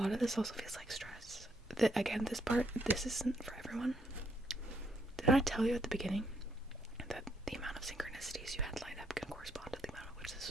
of this also feels like stress. Again, this isn't for everyone. Did I tell you at the beginning that the amount of synchronicities you had lined up can correspond to the amount of which this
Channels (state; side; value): normal; both; correlation 0.73